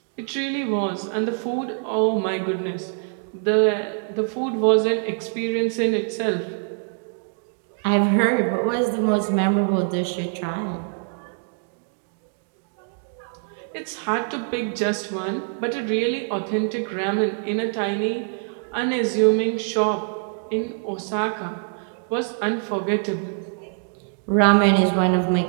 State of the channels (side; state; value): left; silent; 59 dB below the other